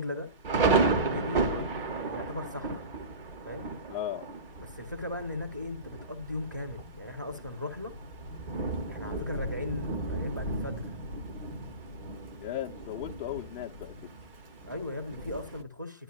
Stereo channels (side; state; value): both; inverted; correlation -0.31